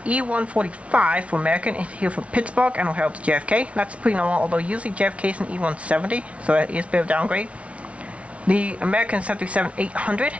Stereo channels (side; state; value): left; late; 0.063 ms